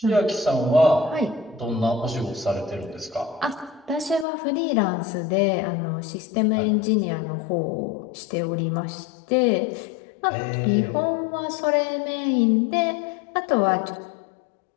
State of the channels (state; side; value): drops out; right; at 4.2 s